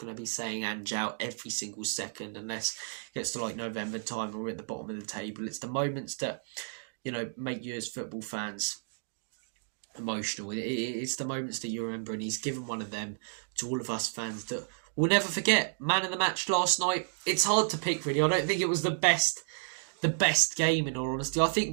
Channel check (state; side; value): silent; left; digital silence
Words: to be saying Ange out every single second unless it gets to like November time and we're at the bottom of the table. It's the moments that, make you as football fans emotional. It's the moments that you remember, and he's given one of them to all of us fans that we'll never forget. Man of the match last night. It's hard to pick, really. I don't think it was the best game, in all honesty. I